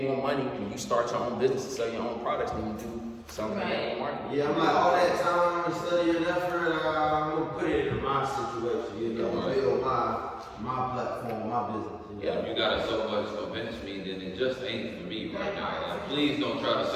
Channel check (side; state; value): both; identical; correlation 1.00